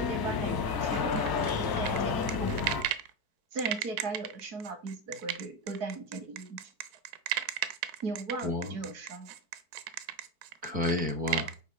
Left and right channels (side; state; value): left; late; 4.5 ms